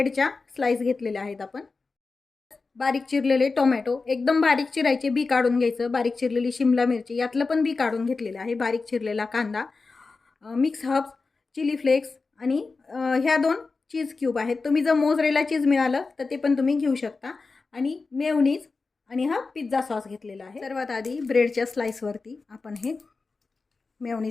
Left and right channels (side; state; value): right; quieter; 4.1 dB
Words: स्लाइस घेतलेल्या आहेत आपण। बारीक चिरलेले टोमॅटो, एकदम बारीक चिरायचे, बी काढून घ्यायचं। बारीक चिरलेली शिमला मिरची, यातलं पण बी काढून घेतलेलं आहे। बारीक चिरलेला कांदा, मिक्स हर्ब्स, चिली फ्लेक्स आणि ह्या 2 चीज क्यूब आहेत। तुम्ही जर मोझरेला चीज मिळालं तर ते पण तुम्ही घेऊ शकता। आणि मेयोनीज आणि हा पिझ्झा सॉस घेतलेला आहे। सर्वात आधी ब्रेडच्या स्लाइसवरती आपण हे